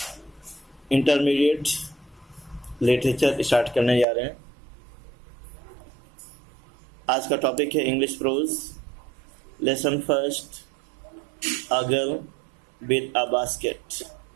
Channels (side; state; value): left; drops out; at 4.0 s